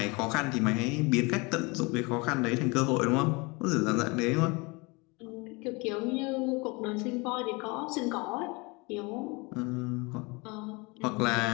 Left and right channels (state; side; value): quieter; right; 27.2 dB